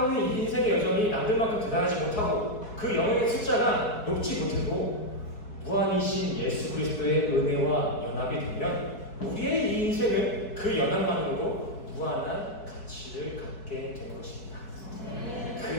있는 이 인생의 여정이 남들만큼 대단하지 못하고 그 영역의 숫자가 높지 못해도 무한이신 예수 그리스도의 은혜와 연합이 되면 우리의 이 인생은 그 연합만으로도 무한한 가치를 갖게 되는 것입니다.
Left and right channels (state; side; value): late; right; 4.7 ms